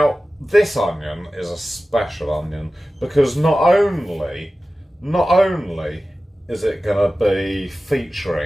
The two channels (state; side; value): normal; both; correlation 0.96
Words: this onion is a special onion, because not only is it going to be